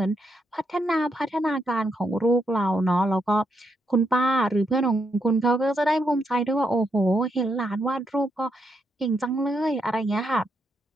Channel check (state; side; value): normal; both; correlation 0.80